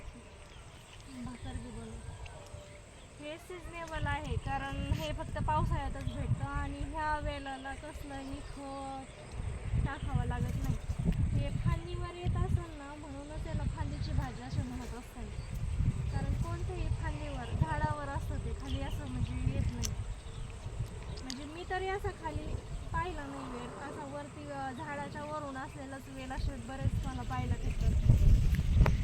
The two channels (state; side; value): identical; both; correlation 1.00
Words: हे सिजनेबल आहे, कारण हे फक्त पावसाळ्यातच भेटतं आणि ह्या वेळेला कसलंही खत टाकावं लागत नाही. हे फांदीवर येत असेल ना, म्हणूनच त्याला फांदीची भाजी असे म्हणत असतात. कारण कोणतेही फांदीवर झाडावर असतं, ते खाली असं म्हणजे येत नाही. म्हणजे मी तरी असं खाली पाहिलं नाही वेल, असा वरती झाडाच्या वरून असलेलाच वेल असे बरेच मला पाहायला भेटतात.